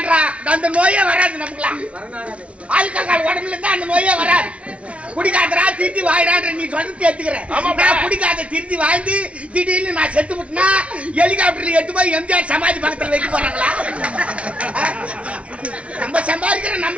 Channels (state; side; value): late; left; 0.062 ms